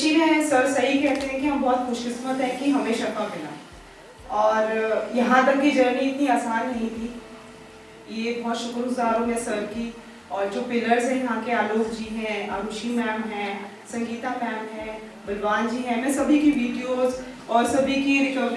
में सर सही कहते हैं कि हम बहुत खुशकिस्मत हैं कि हमें शफा मिला। और यहाँ तक की जर्नी इतनी आसान नहीं थी। ये बहुत शुक्रगुजार हूँ मैं सर की। और जो पिलर्स हैं यहाँ के, आलोक जी हैं, आरुषि मैम हैं, संगीता मैम हैं, बलवान जी हैं, मैं सभी की वीडियोस और सभी की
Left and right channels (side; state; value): both; identical; correlation 1.00